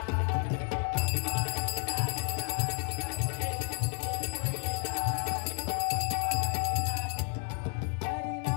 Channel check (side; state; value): right; quieter; 39.2 dB